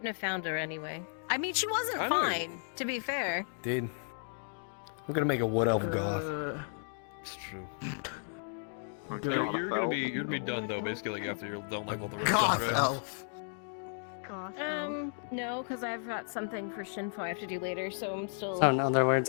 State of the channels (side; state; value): right; silent; digital silence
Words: have found her anyway. I mean, she wasn't I know. fine. To be fair. Dude. I'm gonna make a wood elf goth. It's true. You're gonna be done though. Basically, like after you're done like with the rest of Goth it. elf. No, because I've got something for Shinfo I have to do later, so I'm still. So in other words,